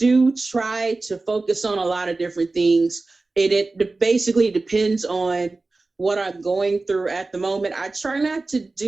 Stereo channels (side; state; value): left; quieter; 3.4 dB